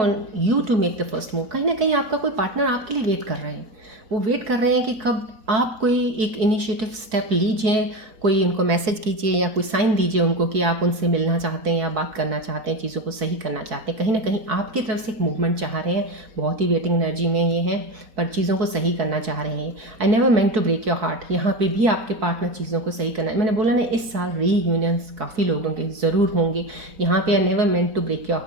you to make the first move. कहीं ना कहीं आपका कोई पार्टनर आपके लिए वेट कर रहे हैं, वो वेट कर रहे हैं कि कब आप कोई एक इनिशिएटिव स्टेप लीजिए, कोई उनको मैसेज कीजिए या कोई साइन दीजिए उनको कि आप उनसे मिलना चाहते हैं या बात करना चाहते हैं, चीज़ों को सही करना चाहते हैं। कहीं ना कहीं आपकी तरफ से एक मूवमेंट चाह रहे हैं, बहुत ही वेटिंग एनर्जी में ये हैं, पर चीज़ों को सही करना चाह रहे हैं। I never meant to break your heart, यहाँ पे भी आपके पार्टनर चीज़ों को सही करना है। मैंने बोला ना, इस साल रीयूनियंस काफ़ी लोगों के ज़रूर होंगे। यहाँ पे I never meant to break your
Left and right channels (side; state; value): left; late; 4.6 ms